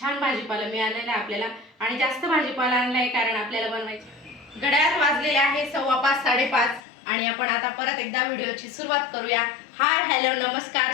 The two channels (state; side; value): drops out; right; at 6.8 s